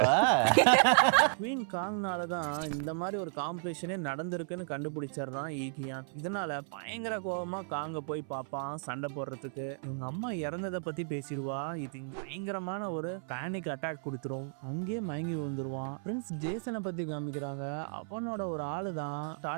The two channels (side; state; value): left; silent; 55 dB below the other